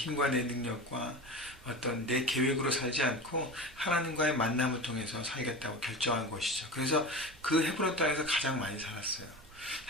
내 능력과 어떤 내 계획으로 살지 않고 하나님과의 만남을 통해서 살겠다고 결정한 것이죠. 그래서 그 헤브론 땅에서 가장 많이 살았어요.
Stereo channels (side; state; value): right; noise; rumble, 23 dB below the sound